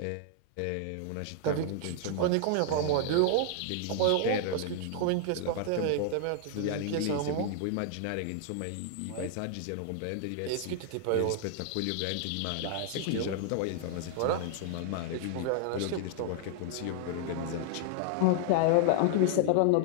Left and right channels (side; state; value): both; different; correlation -0.01